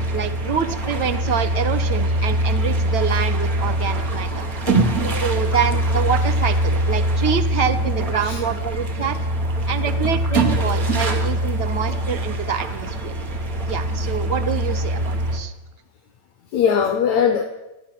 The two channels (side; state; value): right; late; 9.0 ms